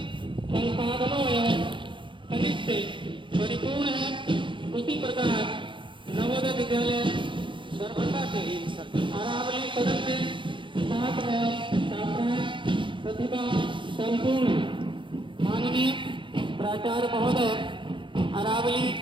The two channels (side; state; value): left; late; 0.24 ms